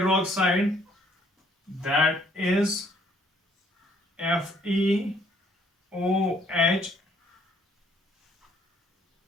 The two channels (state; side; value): normal; both; correlation 0.64